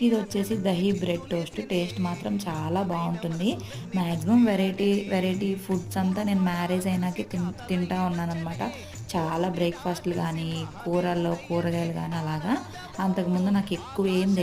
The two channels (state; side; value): identical; both; correlation 1.00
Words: ఇదొచ్చేసి దహీ బ్రెడ్ టోస్ట్. టేస్ట్ మాత్రం చాలా బావుంటుంది. మాక్సిమం వెరైటీ ఫుడ్స్ అంతా నేను మ్యారేజ్ అయినాకే తింటా ఉన్నాననమాట. చాలా బ్రేక్‌ఫాస్ట్‌లు గానీ, కూరగాయలు గానీ అలాగా. అంతకుముందు నాకెక్కువ ఏం